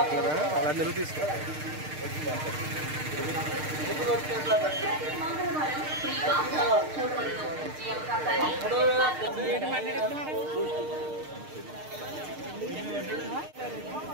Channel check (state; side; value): late; left; 6.6 ms